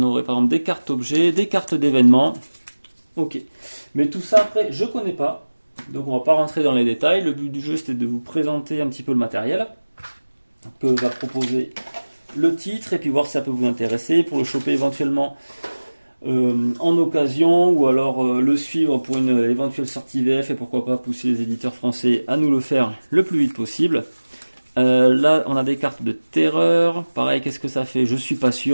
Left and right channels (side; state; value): both; inverted; correlation -1.00